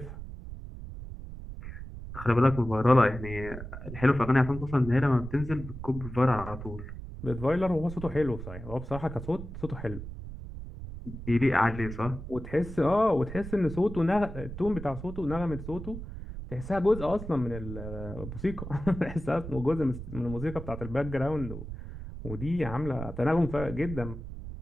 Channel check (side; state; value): right; noise; rumble, 10 dB below the sound